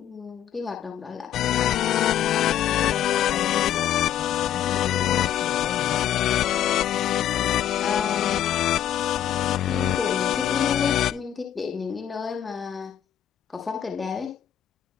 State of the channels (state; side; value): quieter; right; 10.7 dB